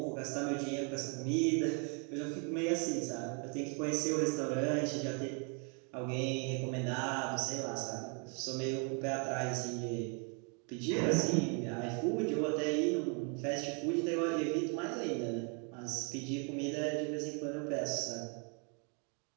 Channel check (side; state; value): left; quieter; 37.2 dB